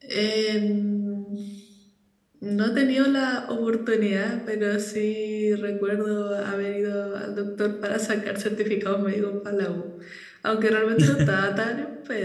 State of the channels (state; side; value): identical; both; correlation 1.00